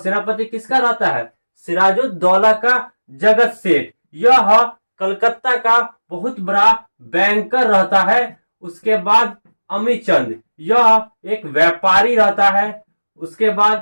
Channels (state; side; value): inverted; both; correlation -1.00